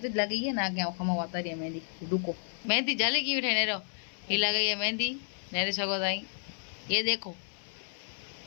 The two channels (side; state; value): right; silent; 57 dB below the other